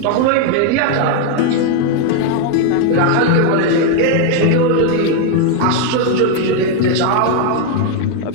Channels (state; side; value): different; both; correlation 0.01